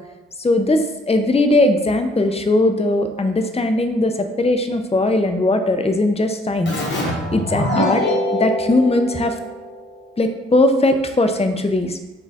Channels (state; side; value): normal; both; correlation 0.63